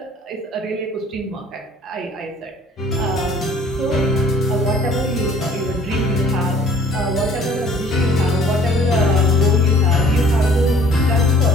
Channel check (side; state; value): both; normal; correlation 0.54